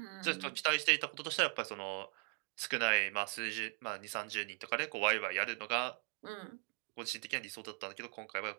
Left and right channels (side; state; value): left; quieter; 39.3 dB